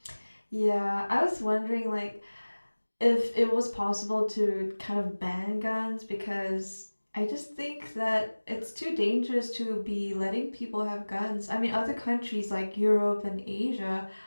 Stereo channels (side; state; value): both; inverted; correlation -1.00